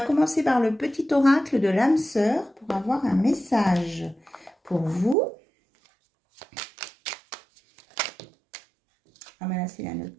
commencer par le petit oracle de l'âme sœur pour avoir un message pour vous. Ah ben là, c'est la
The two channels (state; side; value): drops out; left; at 5.2 s